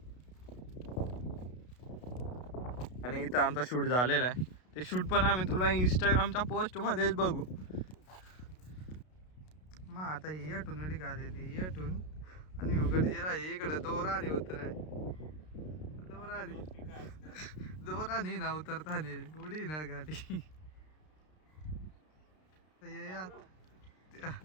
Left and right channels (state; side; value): late; right; 32 ms